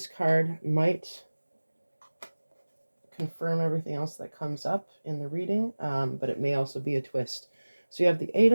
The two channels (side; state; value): both; inverted; correlation -1.00